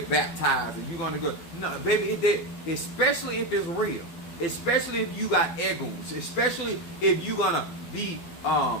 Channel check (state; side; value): late; right; 12 ms